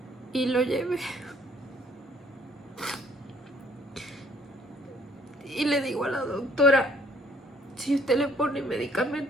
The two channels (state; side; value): normal; both; correlation 0.62